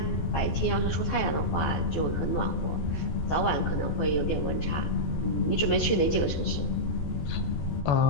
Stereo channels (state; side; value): late; right; 13 ms